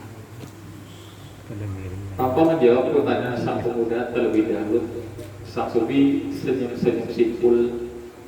tanpa menjawab pertanyaan sang pemuda terlebih dahulu, sang sufi senyum-senyum simpul.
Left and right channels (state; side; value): identical; both; correlation 1.00